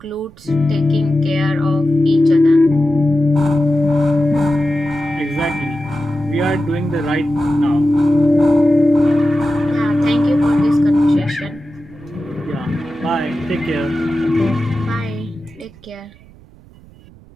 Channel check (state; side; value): noise; right; rumble, 24 dB below the sound